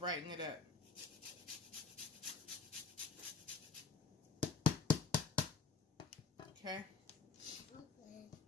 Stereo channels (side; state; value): right; quieter; 5.2 dB